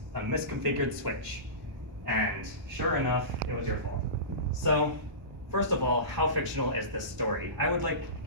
A misconfigured switch. And sure enough, it was your fault. So first of all, how fictional is this story? I would like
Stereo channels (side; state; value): left; late; 1.0 ms